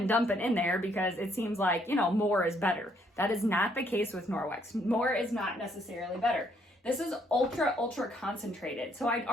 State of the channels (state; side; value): normal; both; correlation 0.69